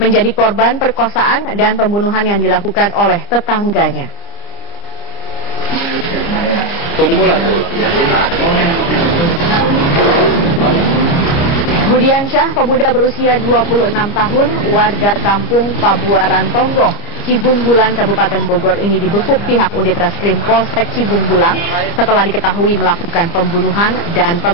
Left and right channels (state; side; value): late; right; 29 ms